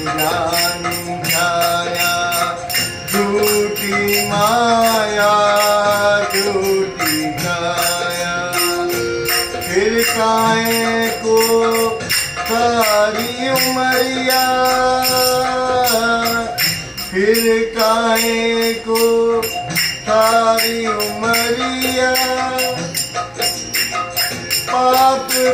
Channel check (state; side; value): identical; both; correlation 1.00